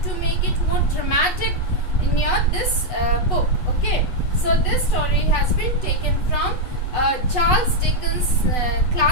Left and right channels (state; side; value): late; right; 8.1 ms